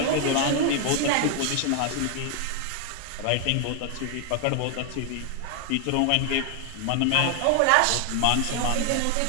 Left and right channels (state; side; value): different; both; correlation 0.00